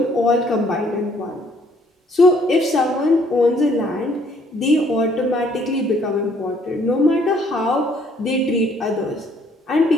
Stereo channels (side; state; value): both; normal; correlation 0.64